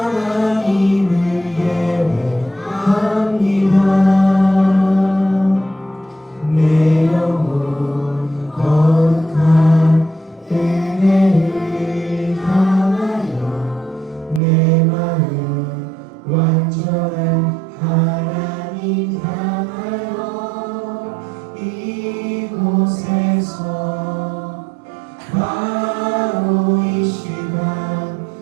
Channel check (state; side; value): drops out; left; at 14.4 s